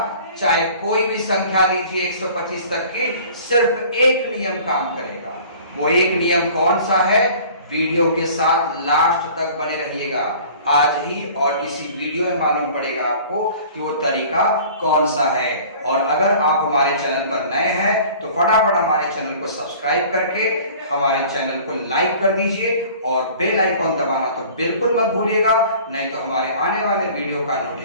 चाहे कोई भी संख्या लीजिए 125 तक की, सिर्फ एक नियम काम करेगा। वो एक नियम कौन सा है, वीडियो के साथ लास्ट तक बने रहिएगा। आज ही और इसी वीडियो में मालूम पड़ेगा आपको कि वो तरीका कौन सा है। और अगर आप हमारे चैनल पर नए हैं तो फटाफट हमारे चैनल को सब्सक्राइब करके हमारे चैनल को लाइक कर दीजिए और बेल आइकॉन दबाना तो बिल्कुल मत भूलिएगा, नहीं तो हमारे आने वाले वीडियो का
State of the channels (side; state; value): both; inverted; correlation -0.47